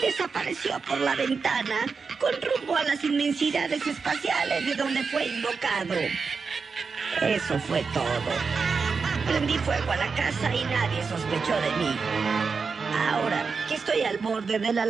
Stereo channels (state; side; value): quieter; left; 5.1 dB